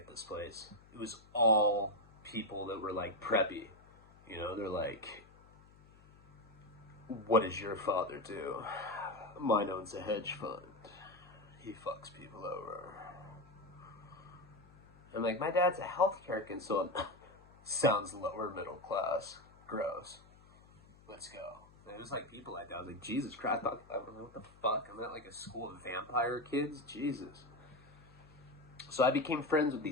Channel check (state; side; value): noise; left; hum, 24 dB below the sound